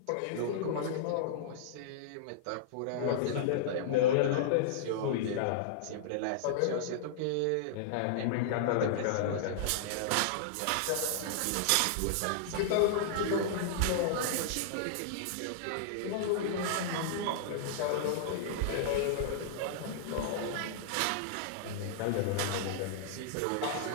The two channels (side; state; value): both; different; correlation -0.02